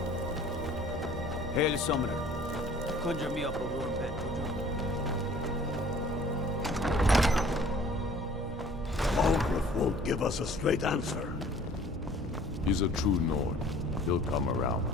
Hail, Summoner. Conjure me up a warm bed, would you? All won't give us a straight answer. He's a true Nord. He'll come around.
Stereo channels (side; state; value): both; normal; correlation 0.51